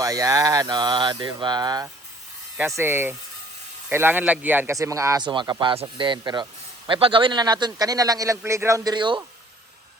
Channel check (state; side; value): normal; both; correlation 0.56